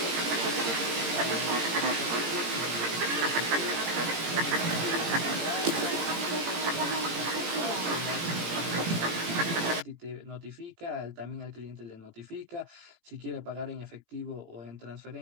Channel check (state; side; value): late; left; 17 ms